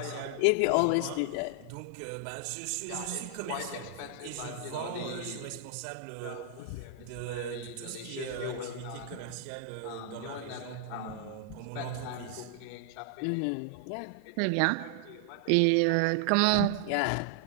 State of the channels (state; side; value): different; both; correlation 0.00